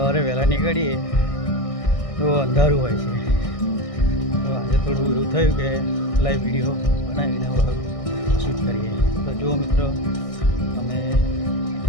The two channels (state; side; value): late; right; 1.6 ms